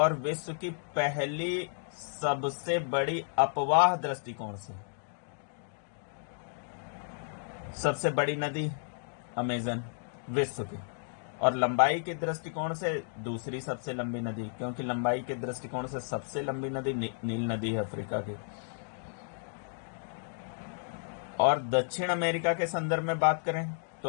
विश्व की पहली सबसे बड़ी अपवाह दृष्टिकोण से सबसे बड़ी नदी अमेजन विश्व की, और लंबाई के दृष्टिकोण से दूसरी सबसे लंबी नदी, क्योंकि लंबाई के दृष्टिकोण से सबसे लंबी नदी नील नदी है अफ्रीका की। और दक्षिण अमेरिका के संदर्भ में बात करें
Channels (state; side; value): silent; right; digital silence